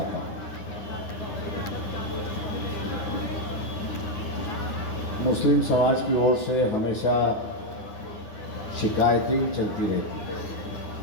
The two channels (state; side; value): late; right; 9.7 ms